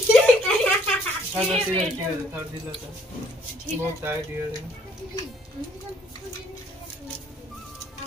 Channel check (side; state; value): both; normal; correlation 0.64